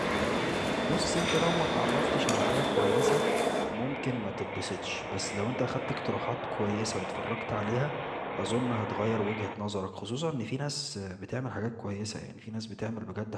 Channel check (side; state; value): both; identical; correlation 1.00